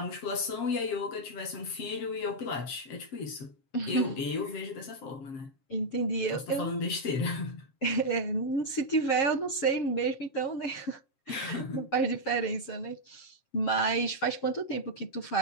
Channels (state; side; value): late; right; 7.4 ms